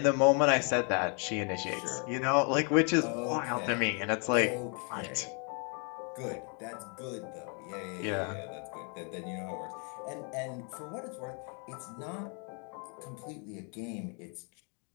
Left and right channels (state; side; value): quieter; right; 37.6 dB